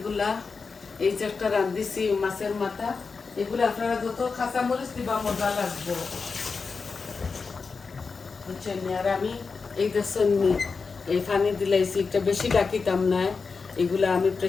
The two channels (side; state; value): right; quieter; 4.8 dB